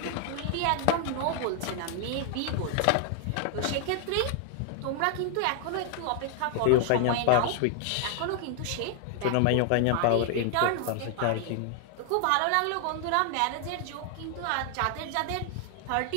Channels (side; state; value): both; different; correlation 0.00